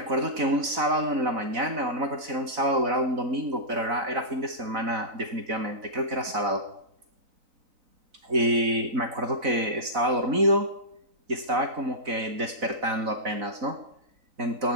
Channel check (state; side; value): late; left; 4.0 ms